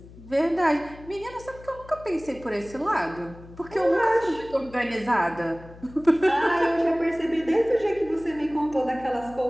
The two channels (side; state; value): left; noise; hum, 19 dB below the sound